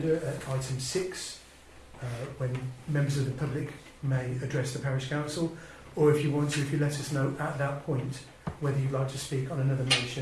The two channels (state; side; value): identical; both; correlation 1.00